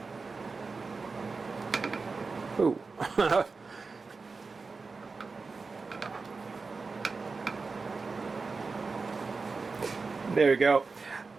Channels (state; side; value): quieter; left; 4.3 dB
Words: Ooh. There you go.